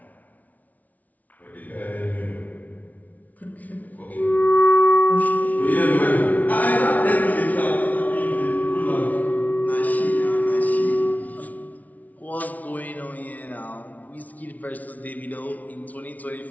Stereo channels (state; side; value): late; right; 0.074 ms